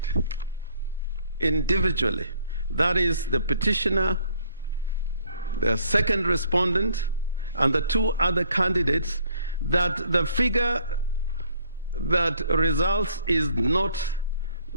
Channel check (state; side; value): inverted; both; correlation -0.62